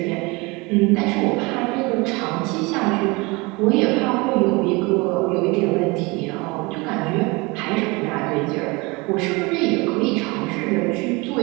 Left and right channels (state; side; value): quieter; left; 25.6 dB